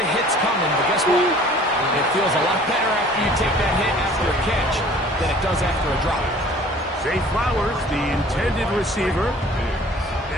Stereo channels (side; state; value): both; normal; correlation 0.50